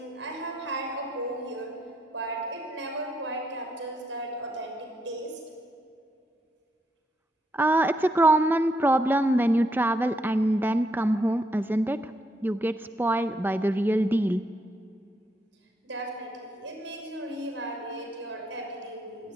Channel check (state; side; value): normal; both; correlation 0.77